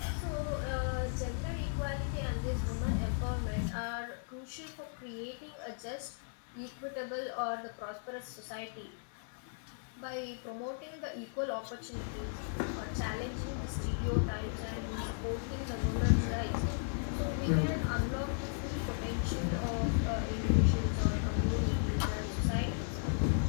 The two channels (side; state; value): right; silent; 54 dB below the other